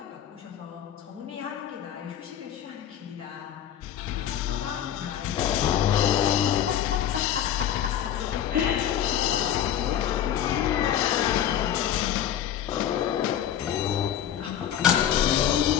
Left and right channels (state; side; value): quieter; right; 10.2 dB